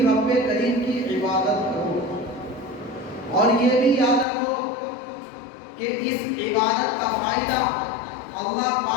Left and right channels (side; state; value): right; drops out; at 4.2 s